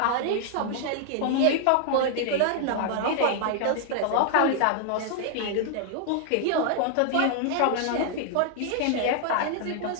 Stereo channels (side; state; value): both; different; correlation -0.01